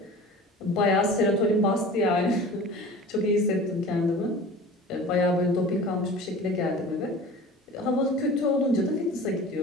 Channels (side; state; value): both; normal; correlation 0.39